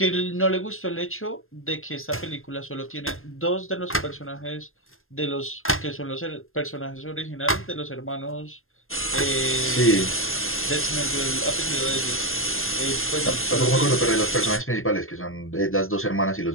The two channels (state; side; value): late; right; 0.60 ms